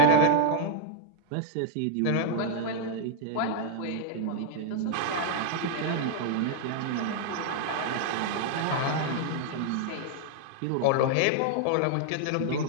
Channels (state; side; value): different; both; correlation 0.00